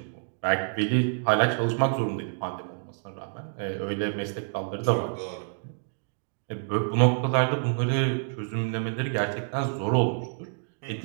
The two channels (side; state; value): left; silent; digital silence